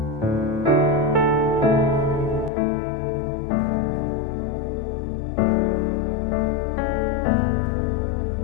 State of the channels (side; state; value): right; drops out; at 2.5 s